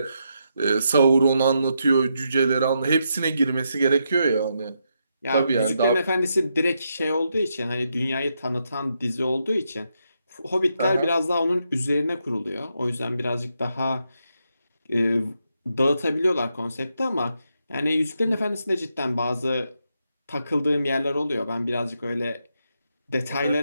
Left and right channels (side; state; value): both; inverted; correlation -0.82